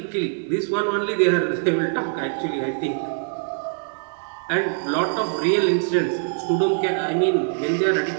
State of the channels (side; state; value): left; silent; 63 dB below the other